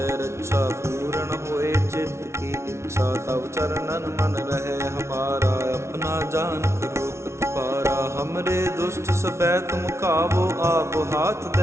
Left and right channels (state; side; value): late; left; 0.13 ms